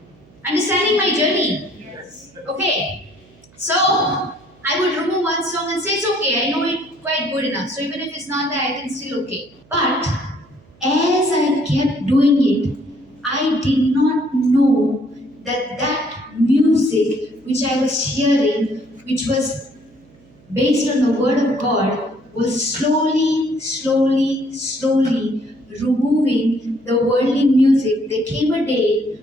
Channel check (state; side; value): noise; right; hum, 28 dB below the sound